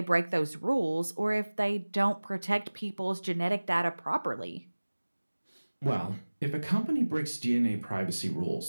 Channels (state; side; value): inverted; both; correlation -1.00